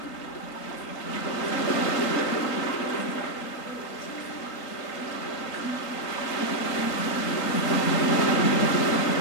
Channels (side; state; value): right; late; 3.9 ms